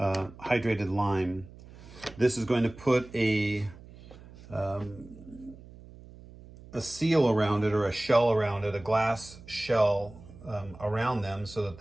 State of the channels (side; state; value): right; noise; hum, 19 dB below the sound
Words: lime. This is going to put a seal around it, or a shell around it, a glass shell around them, so that